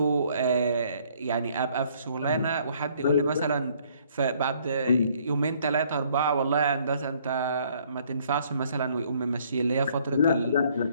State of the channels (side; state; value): both; inverted; correlation -0.63